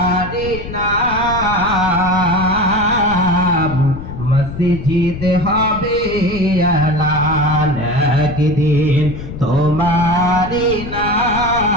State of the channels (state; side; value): noise; left; rumble, 10 dB below the sound